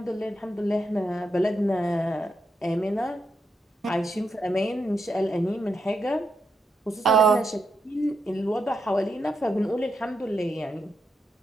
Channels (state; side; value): normal; both; correlation 0.83